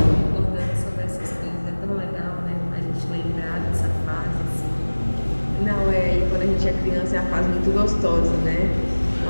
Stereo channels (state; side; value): inverted; both; correlation -1.00